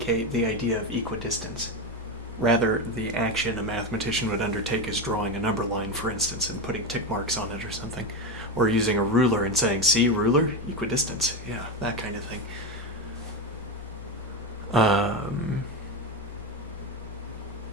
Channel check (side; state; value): both; normal; correlation 0.15